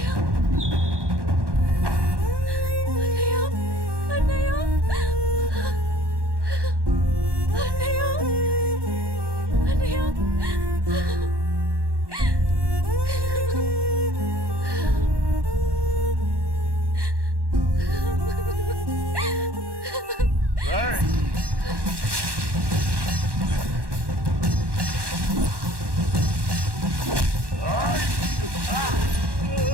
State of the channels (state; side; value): late; left; 1.1 ms